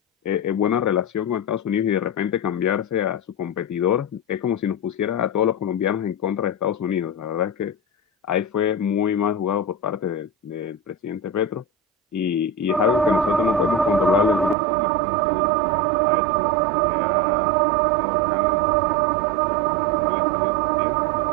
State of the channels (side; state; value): left; drops out; at 14.6 s